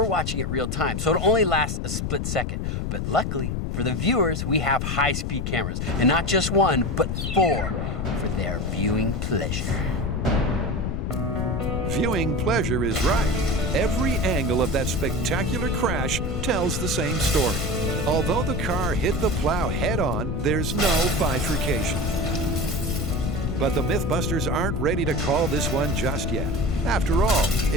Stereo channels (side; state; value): left; noise; rumble, 1 dB below the sound